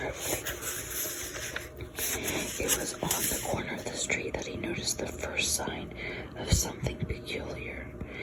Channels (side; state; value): both; identical; correlation 1.00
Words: It was on the corner of the street that he noticed the first sign of something peculiar: